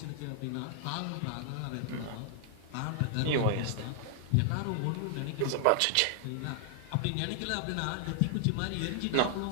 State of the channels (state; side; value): different; both; correlation 0.00